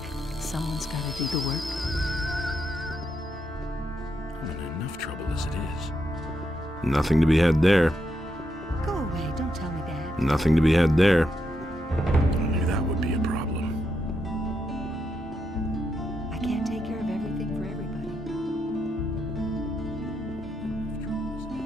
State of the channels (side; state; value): both; normal; correlation 0.81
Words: Someone's got to do the work. I'm in enough trouble as it is. Nothing to be had there. Go away, don't tell me that. Nothing to be had there. I knew that would be a problem. I can't take care of everything for everybody.